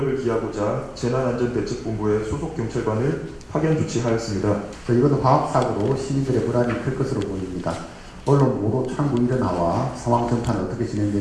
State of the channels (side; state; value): both; identical; correlation 1.00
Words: 기하고자 재난안전대책본부의 소속 경찰관을 파견 조치하였습니다. 이번 화학사고로 시민들의 불안이 클 것으로 보입니다. 언론 보도 창구 일어나와 상황 전파는 어떻게